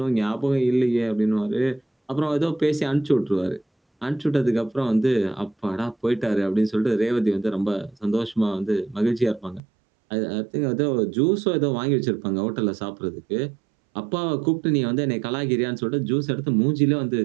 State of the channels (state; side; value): drops out; left; at 9.6 s